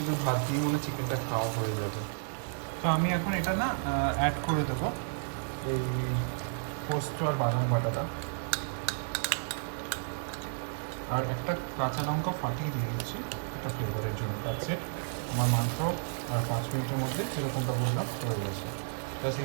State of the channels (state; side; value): silent; left; digital silence